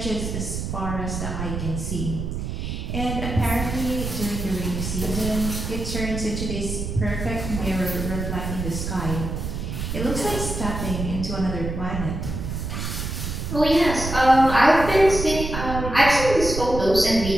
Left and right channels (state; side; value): noise; right; rumble, 4 dB below the sound